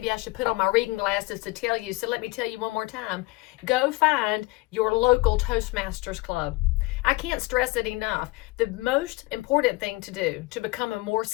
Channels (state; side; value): quieter; right; 22.1 dB